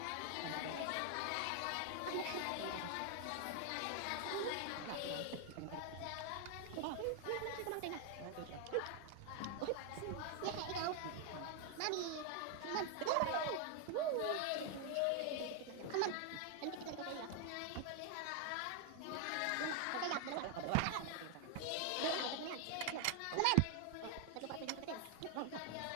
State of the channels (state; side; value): different; both; correlation 0.00